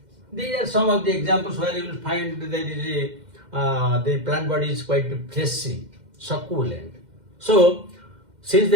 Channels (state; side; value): late; left; 2.1 ms